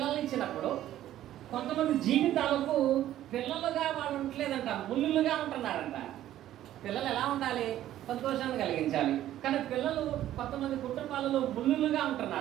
ఇచ్చినప్పుడు కొంతమంది జీవితాలకు పిల్లలుగా వాళ్ళు ఉండలేదంట, ముళ్ళులుగా ఉంటున్నారంట. పిల్లలు ఎలా ఉండాలి? సంతోషాన్ని కలిగించాలి. కానీ పిల్లలు కొంతమంది కుటుంబాలలో ముళ్ళులుగా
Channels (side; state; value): left; quieter; 12.9 dB